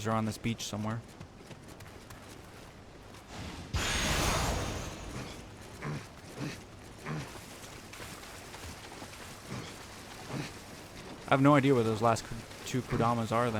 are on this beach somewhere. I have no idea where those last 2 Kodamas are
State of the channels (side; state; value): both; identical; correlation 1.00